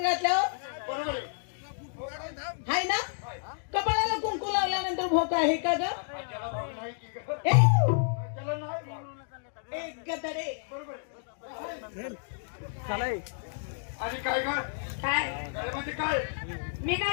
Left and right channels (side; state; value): right; silent; digital silence